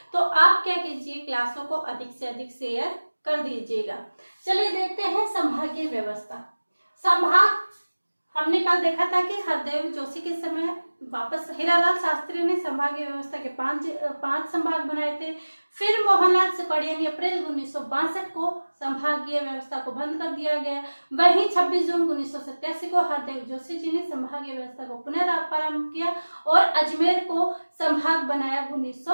तो आप क्या कीजिए, क्लासों को अधिक से अधिक शेयर कर दीजिएगा। चलिए देखते हैं संभागीय व्यवस्था। संभाग हमने कल देखा था कि हरदेव जोशी के समय वापस हीरालाल शास्त्री ने संभागीय व्यवस्था के पांच संभाग बनाए थे। फिर मोहनलाल सुकड़िया ने अप्रैल 1962 को संभागीय व्यवस्था को बंद कर दिया गया। वहीं 26 जून 1987 को हरदेव जोशी जी ने संभागीय व्यवस्था को पुनरारंभ किया और अजमेर को संभाग बनाया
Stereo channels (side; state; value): both; inverted; correlation -1.00